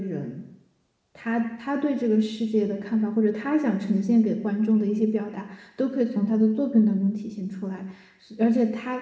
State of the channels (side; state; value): both; identical; correlation 1.00